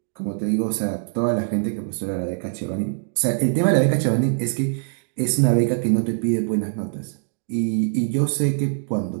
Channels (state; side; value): silent; left; digital silence